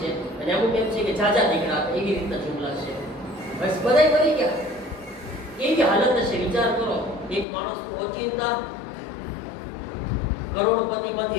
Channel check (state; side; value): drops out; right; at 7.5 s